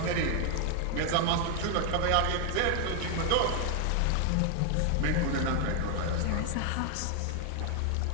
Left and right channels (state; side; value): different; both; correlation 0.00